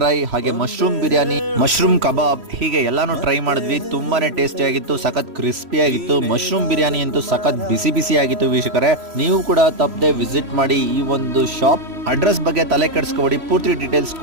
ಹಾಗೆ ಮಶ್ರೂಮ್ ಬಿರಿಯಾನಿ, ಮಶ್ರೂಮ್ ಕಬಾಬ್ ಹೀಗೆ ಎಲ್ಲಾನು ಟ್ರೈ ಮಾಡಿದ್ವಿ. ತುಂಬಾನೇ ಟೇಸ್ಟಿ ಆಗಿತ್ತು, ಸಖತ್ ಕ್ರಿಸ್ಪಿ ಆಗಿತ್ತು. ಮಶ್ರೂಮ್ ಬಿರಿಯಾನಿ ಅಂತೂ ಸಖತ್ ಬಿಸಿ ಬಿಸಿ ಆಗಿತ್ತು ವೀಕ್ಷಕರೇ. ನೀವು ಕೂಡ ತಪ್ಪದೆ ವಿಸಿಟ್ ಮಾಡಿ ಈ ಒಂದು ಶಾಪ್. ಅಡ್ರೆಸ್ ಬಗ್ಗೆ ತಲೆ ಕೆಡಿಸ್ಕೊಬೇಡಿ, ಪೂರ್ತಿ ಡೀಟೇಲ್ಸ್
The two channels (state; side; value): late; left; 3.1 ms